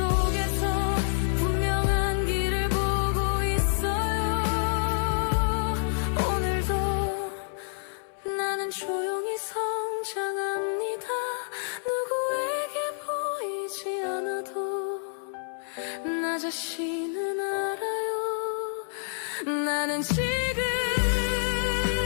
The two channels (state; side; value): silent; right; 58 dB below the other